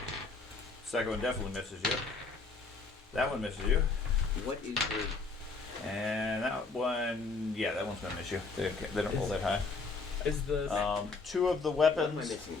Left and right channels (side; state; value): right; quieter; 4.2 dB